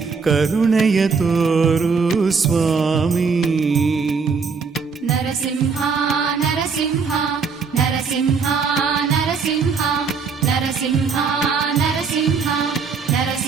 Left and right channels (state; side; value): quieter; left; 5.2 dB